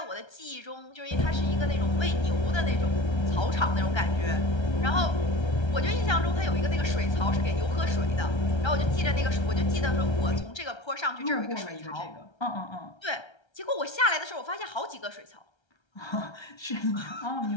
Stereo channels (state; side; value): late; right; 1.3 ms